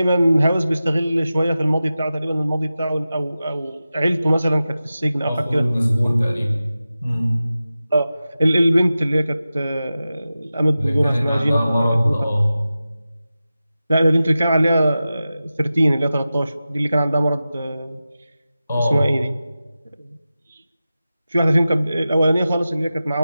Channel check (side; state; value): both; inverted; correlation -0.94